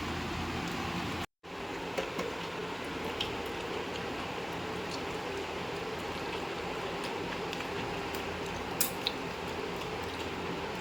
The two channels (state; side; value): identical; both; correlation 1.00